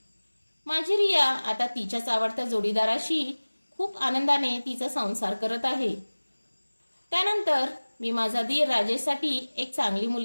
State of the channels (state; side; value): inverted; both; correlation -1.00